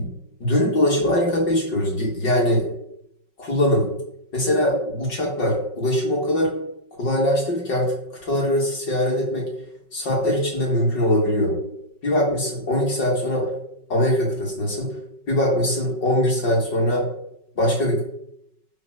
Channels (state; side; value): late; right; 5.4 ms